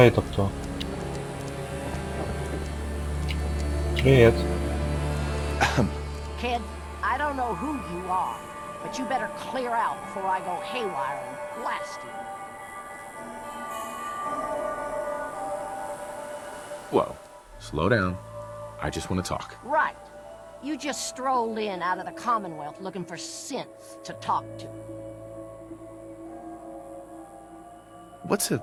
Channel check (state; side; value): identical; both; correlation 1.00